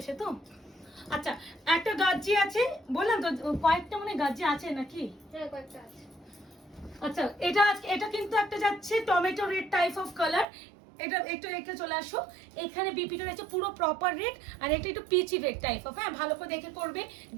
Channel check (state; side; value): drops out; left; at 10.5 s